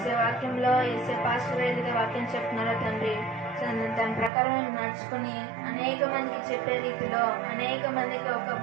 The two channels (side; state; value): left; drops out; at 4.3 s